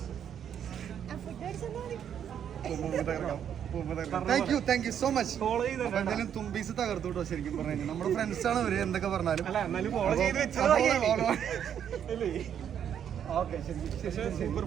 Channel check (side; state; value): left; quieter; 9.0 dB